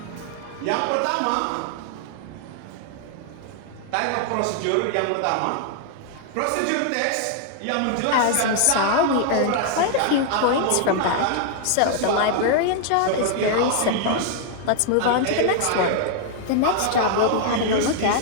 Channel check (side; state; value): both; different; correlation 0.00